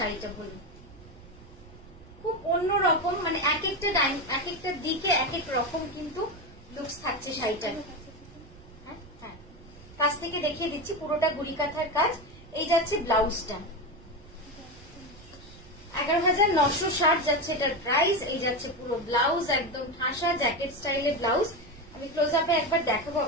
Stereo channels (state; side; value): noise; right; rumble, 21 dB below the sound